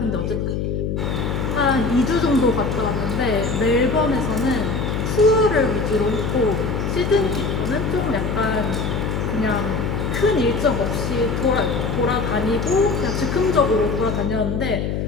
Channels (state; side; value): noise; left; hum, 1 dB below the sound